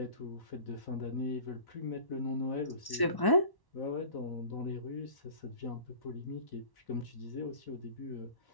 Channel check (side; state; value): right; late; 1.1 ms